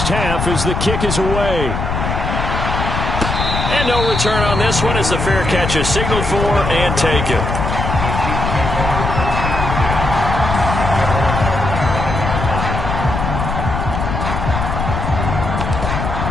half as the kick is away. And no return on this one as the fair catch is signaled for and taken.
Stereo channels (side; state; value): left; noise; rumble, 2 dB below the sound